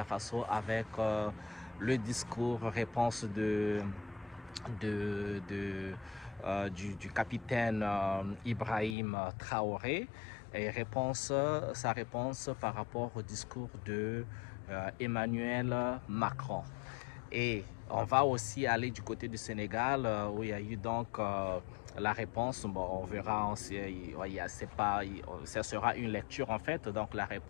Faso avec le discours réponse du capitaine Ibrahim Traoré et sa réponse par rapport au discours de Emmanuel Macron. Et on va aussi aller du côté du Sénégal où il y a eu donc la réponse. Bon, on verra, ça sera une lecture en fait, donc la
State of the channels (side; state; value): right; drops out; at 9.0 s